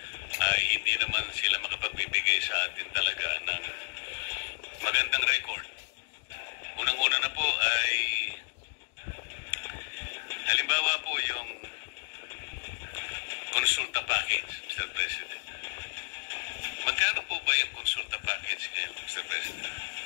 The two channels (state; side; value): silent; right; digital silence